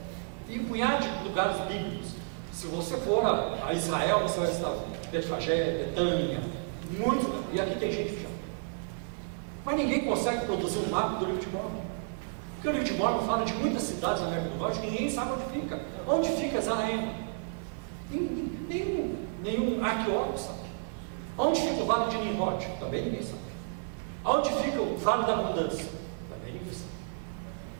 e um punhado de lugares bíblicos. Se você for a Israel, você vai visitar Betfagé, Betânia, muito, e aqui tem gente que já. Mas ninguém consegue produzir um mapa do livro de Mórmon, porque o livro de Mórmon fala de muitas cidades na América do Norte que ninguém sabe onde fica. Onde fica Zaraema? Nenhum arqueólogo sabe. Onde fica o Vale de Nimrod? Também ninguém sabe. Onde fica o Vale da Abundância? Também ninguém sabe.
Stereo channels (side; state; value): left; silent; 57 dB below the other